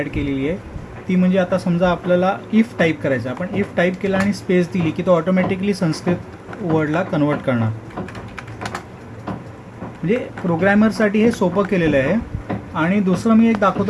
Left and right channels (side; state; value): both; identical; correlation 1.00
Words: केलेली आहे. ती म्हणजे आता समजा आपल्याला इफ टाईप करायचं, आपण इफ टाईप केला आणि स्पेस दिली की तो ऑटोमॅटिकली संस्कृत वर्डला कन्वर्ट करणार. म्हणजे प्रोग्रॅमरसाठी हे सोपं केलेलं आहे. आणि दुसरं मी एक